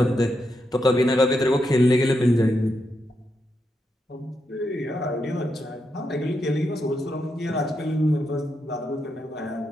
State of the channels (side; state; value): both; normal; correlation 0.83